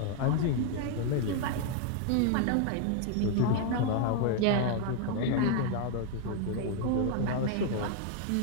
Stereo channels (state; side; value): different; both; correlation 0.00